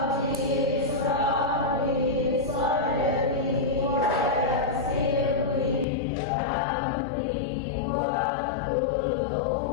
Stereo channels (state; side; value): drops out; right; at 5.9 s